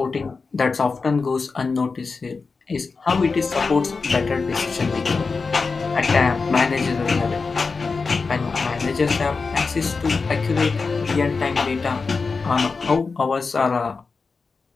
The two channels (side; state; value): right; quieter; 4.5 dB